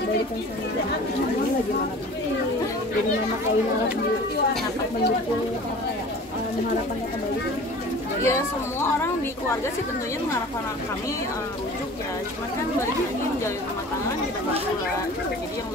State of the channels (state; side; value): normal; both; correlation 0.42